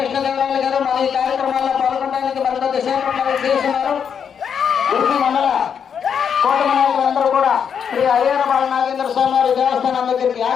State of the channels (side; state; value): right; quieter; 7.4 dB